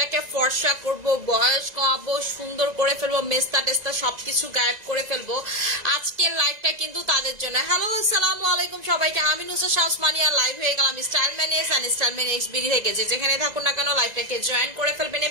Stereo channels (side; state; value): left; late; 1.9 ms